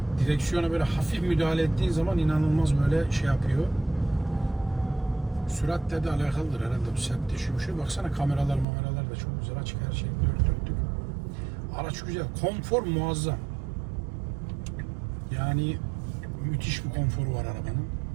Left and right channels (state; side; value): drops out; left; at 8.7 s